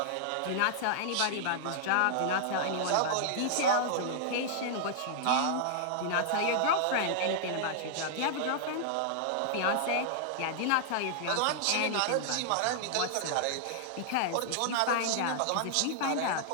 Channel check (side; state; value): both; different; correlation -0.01